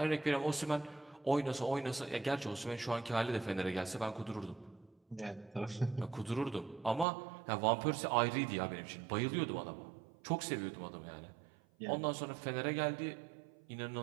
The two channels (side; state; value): left; drops out; at 7.1 s